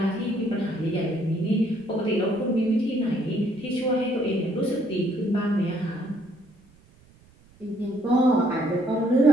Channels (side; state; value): right; noise; rumble, 28 dB below the sound